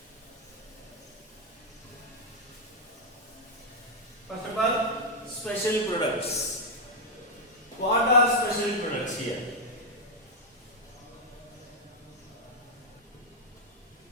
First of all, special products. What are special products here?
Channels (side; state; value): both; normal; correlation -0.01